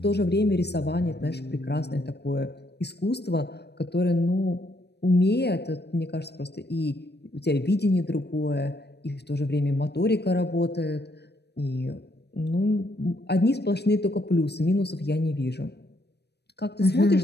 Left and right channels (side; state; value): right; late; 0.48 ms